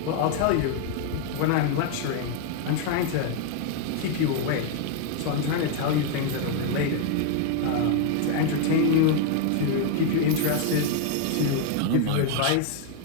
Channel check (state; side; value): different; both; correlation 0.00